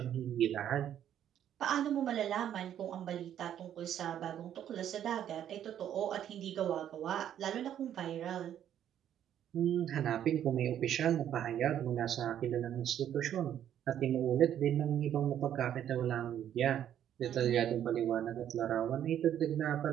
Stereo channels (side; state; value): left; quieter; 10.3 dB